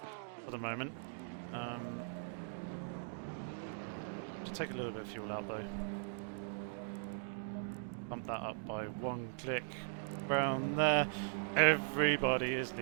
for the moment. Should take a little bit of fuel out though. Bump that up by one click. Around there. Everybody is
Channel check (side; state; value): left; silent; digital silence